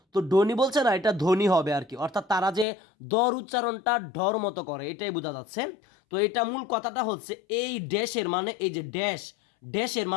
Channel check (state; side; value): drops out; right; at 2.7 s